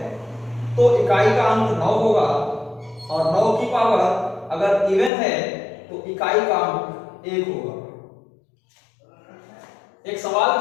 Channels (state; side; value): drops out; right; at 5.1 s